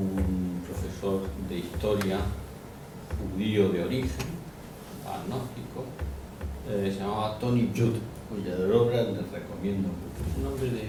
profesor de historia judío de origen, agnóstico, se llamaba Tony Judd, cuya obra les recomiendo mucho. Es un hombre de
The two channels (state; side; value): identical; both; correlation 1.00